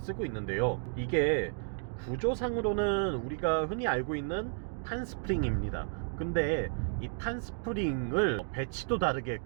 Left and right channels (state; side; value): silent; left; 56 dB below the other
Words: 있는데요. 이게 구조상으로는 우리가 흔히 알고 있는 판스프링입니다. 근데 이 판스프링을 배치도 다르게